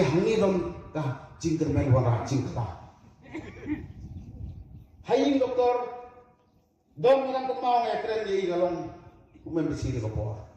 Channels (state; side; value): identical; both; correlation 1.00